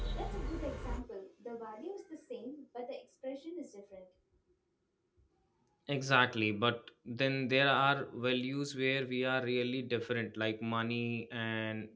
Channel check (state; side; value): identical; both; correlation 1.00